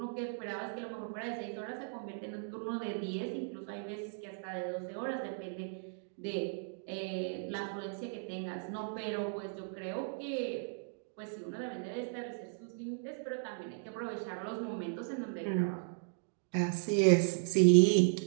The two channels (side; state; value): left; silent; digital silence